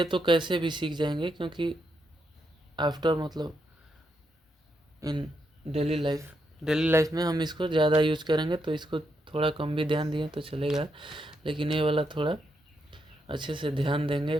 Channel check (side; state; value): both; normal; correlation 0.81